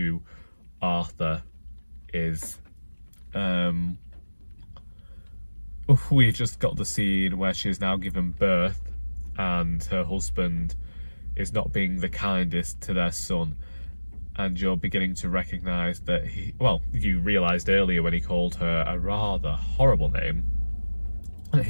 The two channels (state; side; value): inverted; both; correlation -1.00